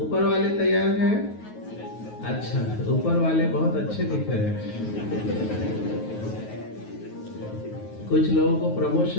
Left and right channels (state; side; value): late; right; 9.4 ms